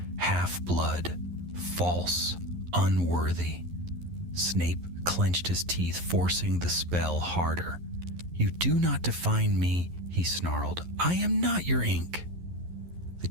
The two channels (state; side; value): late; left; 11 ms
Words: "Half-blood, false, unworthy." Snape clenched his teeth, forcing the spell harder. "You do not define me," he snarled. "I am not your ink." The